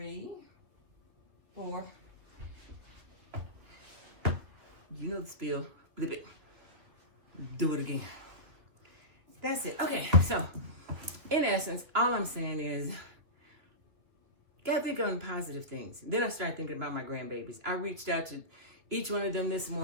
4. You know the spiel. Flip it. Do it again. That's it. Okay, so in essence, all I'm saying is, gotta think on positive things. Then I started thinking about my grandbabies. I reached out to each one of them this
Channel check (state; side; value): late; left; 2.8 ms